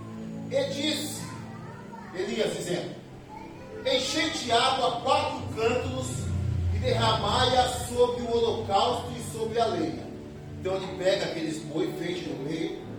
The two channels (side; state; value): both; identical; correlation 1.00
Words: E disse Elias, dizendo: enchei de água 4 cântaros e derramai-a sobre o holocausto e sobre a lenha. Então ele pega aqueles boi feito no meio,